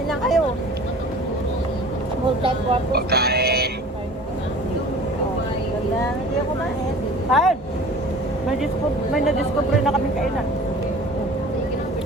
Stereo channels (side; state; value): both; normal; correlation 0.43